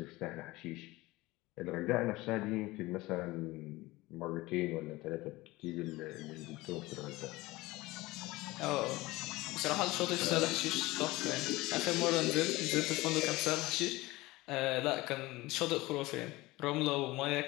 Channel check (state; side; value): quieter; right; 20.2 dB